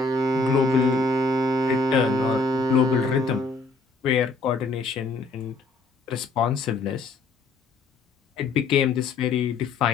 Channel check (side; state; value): right; quieter; 3.7 dB